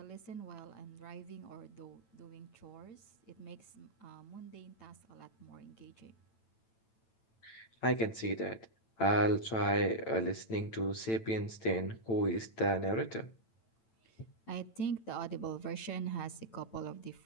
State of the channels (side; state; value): right; late; 8.9 ms